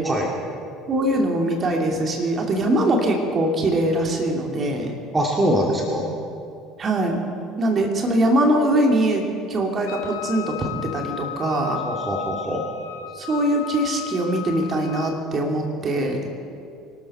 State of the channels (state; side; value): normal; both; correlation 0.53